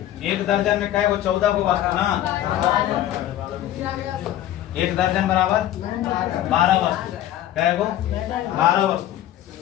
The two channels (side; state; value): right; quieter; 12.7 dB